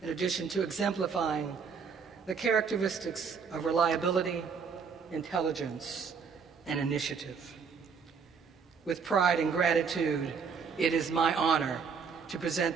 in addition to exemplifying the characteristics of reliability, intelligence, and initiative. With pride and gratitude, it is my honor to present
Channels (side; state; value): left; quieter; 6.0 dB